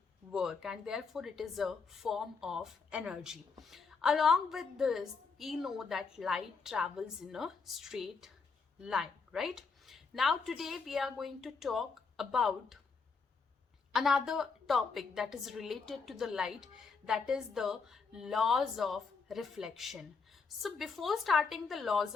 work, and therefore it is a form of energy. Along with this, we know that light travels in a straight line, right? Now today we are going to talk about another topic that is related to the light, that is the laws of reflection. So before starting the laws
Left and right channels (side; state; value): right; quieter; 4.9 dB